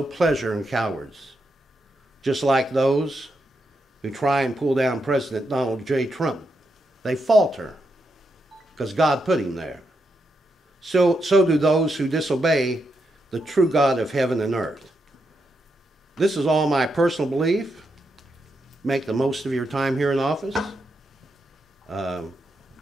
pleasure in cowards, just like those who try and pull down President Donald J. Trump. They falter because God put him there. So do those who disobey the true God of heaven and earth. This is all my personal belief. Make the most of your time here in office.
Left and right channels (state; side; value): normal; both; correlation 0.83